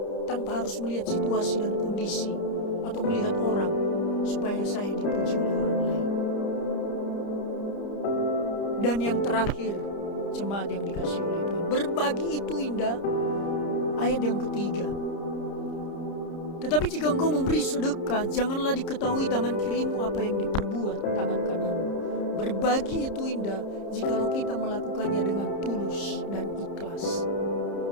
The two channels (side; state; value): right; late; 30 ms